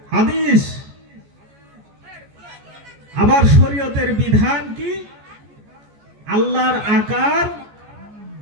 হাদিস, আবার শরীয়তের বিধান কি? আল্লাহর আকার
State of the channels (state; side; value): late; left; 14 ms